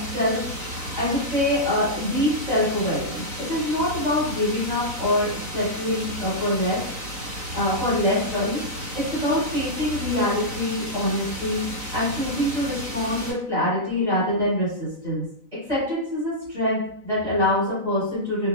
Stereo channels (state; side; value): late; left; 4.0 ms